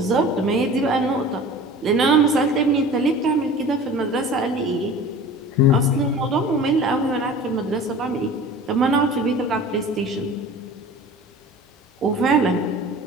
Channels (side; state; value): both; normal; correlation 0.40